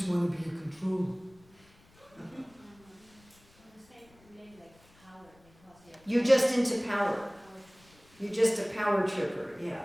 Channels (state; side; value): noise; left; rumble, 29 dB below the sound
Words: want to be a controller. You're just into power. You're just a power tripper, yeah.